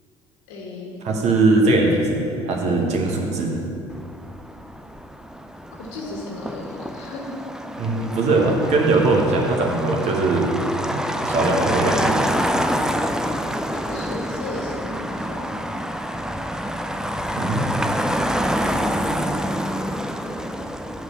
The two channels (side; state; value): both; normal; correlation 0.63